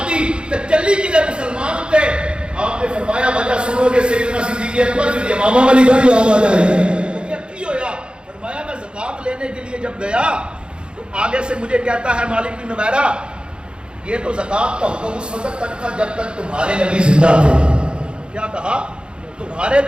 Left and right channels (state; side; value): late; left; 0.053 ms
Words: دی تے چلی کی مسلمان تے۔ آپ نے فرمایا وجہ سنو گے سیدنا صدیق اکبر پھر امامہ والی گھر یاد آ جائے گی۔ کیا کی ہویا؟ فرمایا میں زکات لینے کے لیے جب گیا تو آگے سے مجھے کہتا ہے مالک بن نویرہ یہ تو زکات کا حکم اس وقت تک تھا جب تک تمہارے نبی زندہ تھے۔ کیا کہا؟ تمہارے